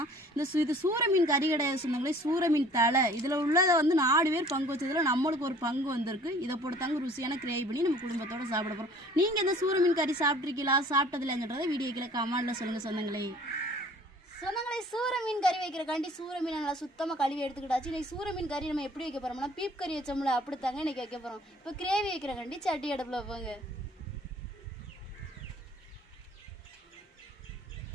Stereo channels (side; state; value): both; normal; correlation 0.51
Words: இது சூர மீன் கறி கிடையாது சொந்தங்களே, சூர மீன் தலை. இதில் உள்ளதை வந்து 4 பேர் பங்கு வச்சதில் நம்மளுக்கு ஒரு பங்கு வந்திருக்கு. இதை போட்டுத்தாங்க ருசியான கிரேவி பண்ணி நம்ம குடும்பத்தோடு சாப்பிட போகிறோம். நீங்கள் இந்த சூர மீன் கறி சாப்பிட்ருக்கீங்களா, சாப்பிட்டதில்லைன்றதை வீடியோக்கில் கமெண்ட்டில் சொல்லுங்கள் சொந்தங்களே. சொந்தங்களை சூர மீன் கறி வைக்கிறக்காண்டி சூர மீன் நல்லா சுத்தமாக கழுவி எடுத்துக்கிட்டாச்சு. இன்றைக்கி சூர மீன் கறி நம்ம எப்படி வைக்க போகிறோம்னா, பீப் கறி வச்சோம்ல அப்படித்தாங்க இன்றைக்கி வைக்க போகிறோம். இப்போ கிரேவி வைக்கிறக்காண்டி சட்டி அடுப்பில் வைப்பாங்க.